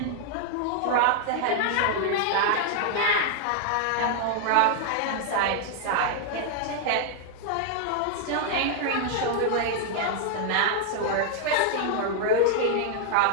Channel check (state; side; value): different; both; correlation 0.00